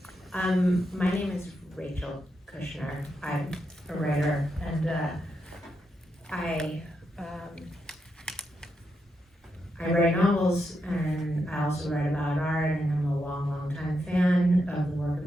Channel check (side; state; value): both; normal; correlation 0.84